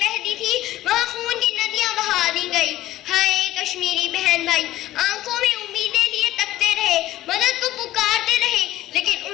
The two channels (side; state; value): right; quieter; 14.9 dB